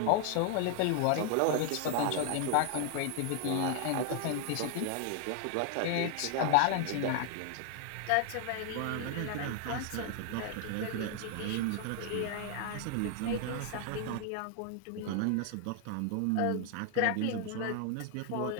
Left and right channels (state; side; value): different; both; correlation 0.00